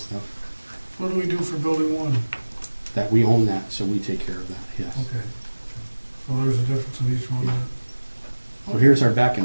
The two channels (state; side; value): inverted; both; correlation -1.00